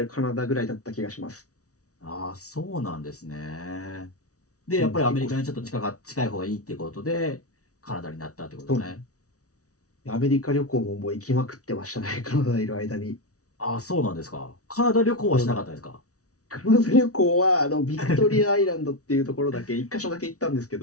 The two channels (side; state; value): right; late; 0.66 ms